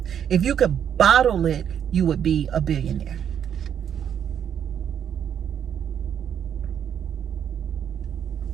If you could bottle it, you would be a billionaire.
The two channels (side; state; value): left; quieter; 8.8 dB